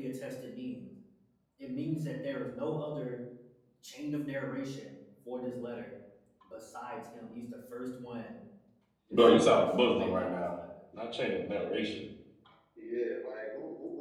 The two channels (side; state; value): both; identical; correlation 1.00